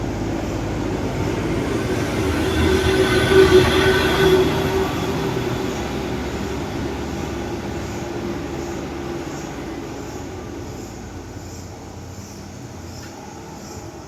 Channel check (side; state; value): both; identical; correlation 1.00